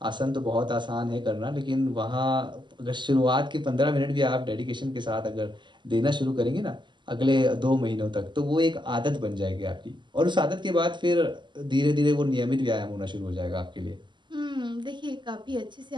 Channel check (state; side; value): late; left; 0.22 ms